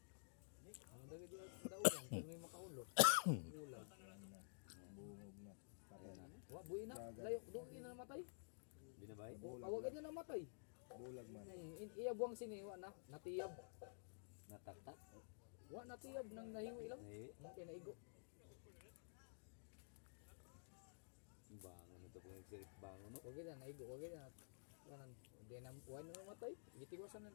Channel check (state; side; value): silent; right; digital silence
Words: Ano dagay di daugan, kung may makaulo. Ulan. Bungog na. Patay na. Wa buhi na. Layo dugi na namatay. Binabay? O, awag na namatay. Bulag man. Iyabuang siniwa na, natiyab. Nataktak? Wa natiyab nang nahiwi lang. Eh, Okay, naigo. bangon ito kung nagsirit bangon no? Wag na naigo, wag na. Kanan, hindi na wa na namatay. Gitiwasan na